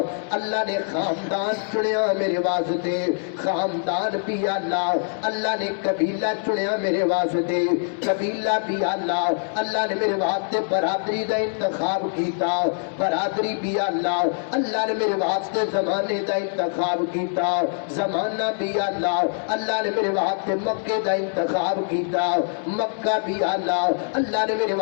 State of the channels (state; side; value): silent; right; 63 dB below the other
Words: اللہ نے خاندان چنیا میرے واسطے، خاندان بھی اللہ نے قبیلہ چنیا میرے واسطے، قبیلہ بھی اللہ نے میرے واسطے برادری دا انتخاب کیتا، برادری بھی اللہ نے میرے واسطے زمانے دا انتخاب کیتا، زمانہ بھی اللہ نے میرے واسطے مکے دا انتخاب کیتا، مکہ بھی اللہ نے میرے